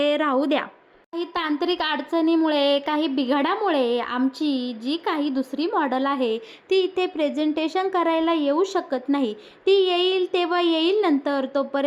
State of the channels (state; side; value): identical; both; correlation 1.00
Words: राहू द्या. काही तांत्रिक अडचणीमुळे, काही बिघाडामुळे आमची जी काही दुसरी मॉडेल आहे ती इथे प्रेझेंटेशन करायला येऊ शकत नाही. ती येईल तेव्हा येईल नंतर.